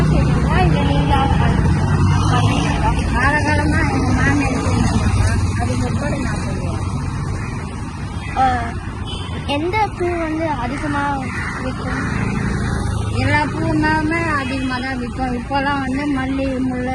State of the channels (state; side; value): identical; both; correlation 1.00